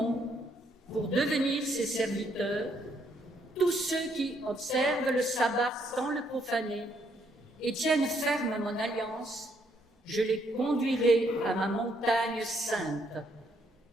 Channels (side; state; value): both; normal; correlation 0.72